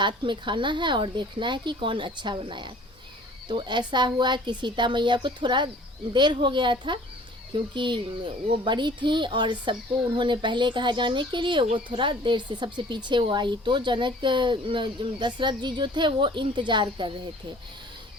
में खाना है और देखना है कि कौन अच्छा बनाया। तो ऐसा हुआ कि सीता मैया को थोड़ा देर हो गया था, क्योंकि वो बड़ी थी और सबको उन्होंने पहले कहा जाने के लिए, वो थोड़ा देर से सबसे पीछे वो आई। तो जनक दशरथ जी जो थे वो इंतज़ार कर रहे थे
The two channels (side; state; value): both; normal; correlation 0.50